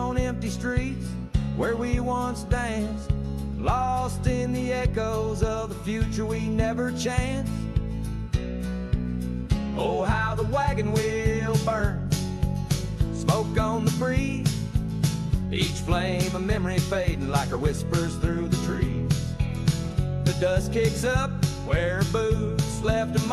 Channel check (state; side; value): identical; both; correlation 1.00